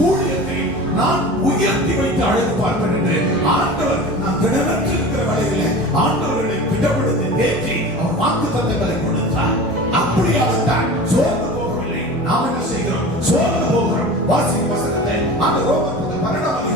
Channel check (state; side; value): normal; both; correlation 0.35